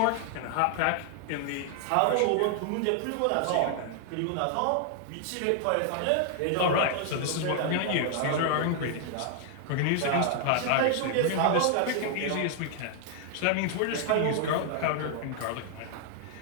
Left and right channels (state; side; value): different; both; correlation 0.00